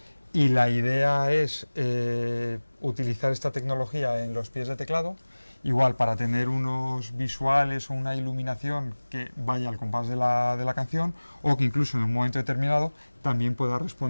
y la idea es utilizar esta tecnología en los pies de teclado, igual para tener unos visuales o una iluminación que vaya al compás de la canción, o que incluso en un momento determinado también pueda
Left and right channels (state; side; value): inverted; both; correlation -1.00